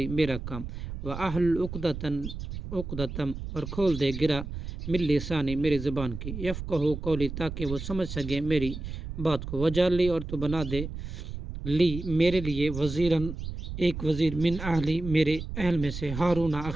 میرا کام، و احلل عقدتم اور کھول دے گرا من لسانی میری زبان کی، یفقہوا قولی تاکہ وہ سمجھ سکے میری بات کو، وجعل لی اور تو بنا دے لی میرے لیے وزیراً ایک وزیر من اہلی میرے اہل میں سے، ہارون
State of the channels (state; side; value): noise; right; rumble, 8 dB below the sound